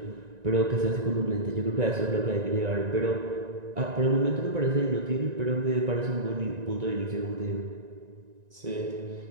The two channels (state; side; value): late; left; 1.9 ms